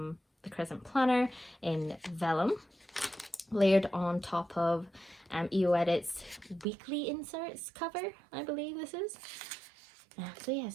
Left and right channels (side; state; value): left; drops out; at 6.7 s